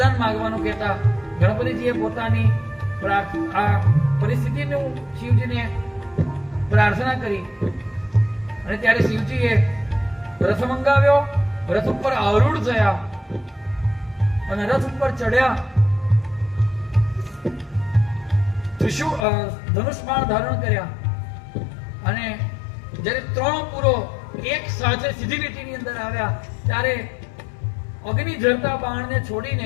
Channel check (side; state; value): right; drops out; at 19.2 s